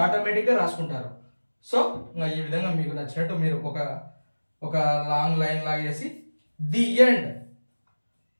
ఆటోమేటిక్ గా రాసుకుంటారు. సో ఈ విధంగా మీకు నచ్చినట్టు మీరు ఒక లాంగ్ లైన్ లాగేసి ది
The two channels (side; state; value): both; inverted; correlation -1.00